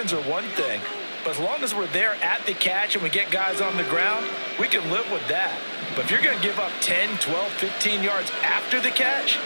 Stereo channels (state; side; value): inverted; both; correlation -1.00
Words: are one thing, but as long as we're there at the catch and we get guys on the ground, we can live with that. But if you're going to give up 10, 12, 15 yards after the catch,